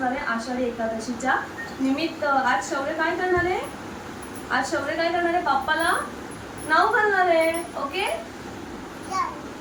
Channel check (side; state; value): both; identical; correlation 1.00